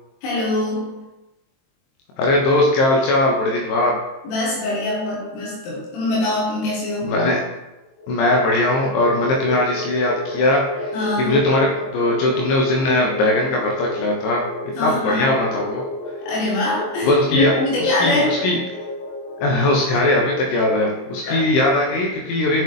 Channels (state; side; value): late; right; 23 ms